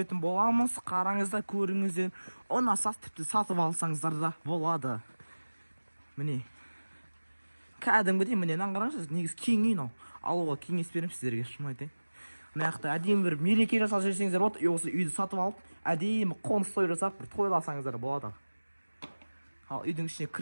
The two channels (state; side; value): inverted; both; correlation -1.00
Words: боламыз. Қараңыздар, көріңіздер. Ұнаса тіпті сатып алсаңыздар да болады. Міне кәдімгідей міне қараңыздар, негізі кең үй мынау. Алуға кеңес беремін сіздерге, шын айтайын. Мына жақта әдемі бір мереке жасап жүрсеңіздер болады, осы үйді сатып алып, әдемі қоныс той жасап бір тойласаңыздар болады. Ал үйдің ішіне